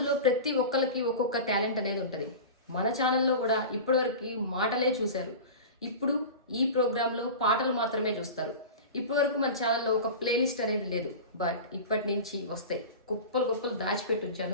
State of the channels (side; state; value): both; inverted; correlation -0.31